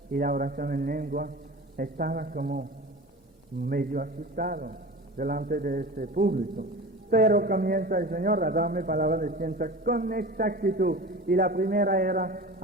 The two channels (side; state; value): both; normal; correlation 0.34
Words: y la oración en lengua, estaba como medio asustado delante de ese público. Pero comienza el Señor a darme palabras de ciencia con exactitud. Y la primera era,